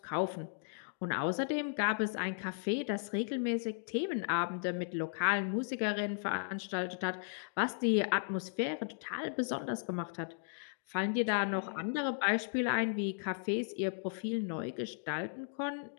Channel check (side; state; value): right; silent; digital silence